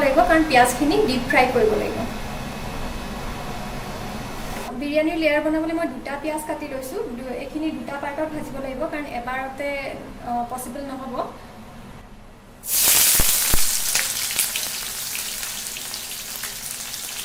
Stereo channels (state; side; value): identical; both; correlation 1.00